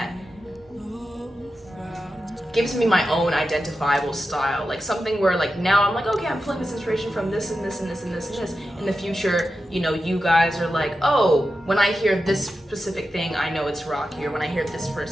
gives me my own identifiable style, like something where like now I'm like, okay, I'm pulling this inspiration from this and this and this and this and this. In the future, you guys are like, oh, when I hear this specific thing, I know it's Rocki, or when I hear this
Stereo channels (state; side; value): normal; both; correlation 0.90